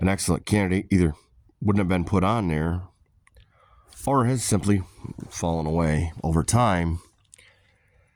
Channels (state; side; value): identical; both; correlation 1.00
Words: excellent candidate either wouldn't have been put on there or has simply fallen away over time.